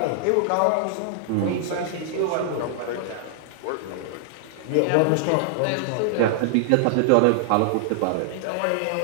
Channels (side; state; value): both; different; correlation -0.01